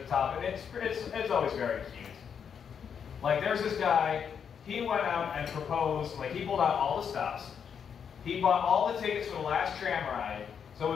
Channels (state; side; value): quieter; right; 7.3 dB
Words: top, and it's always very cute. Like, there's this guy, he went out and proposed, like, he pulled out all the stops. He bought all the tickets for the last tram ride, so it